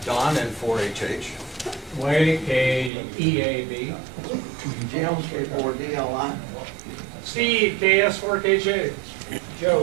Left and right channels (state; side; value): drops out; left; at 2.9 s